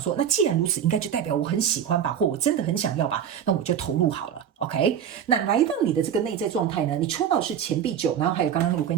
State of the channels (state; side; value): quieter; left; 8.8 dB